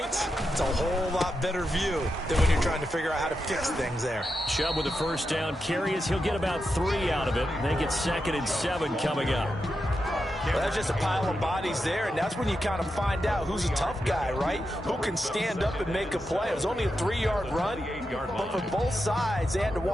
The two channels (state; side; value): normal; both; correlation 0.87